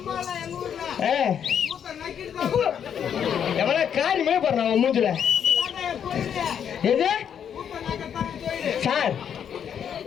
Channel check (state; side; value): quieter; right; 8.4 dB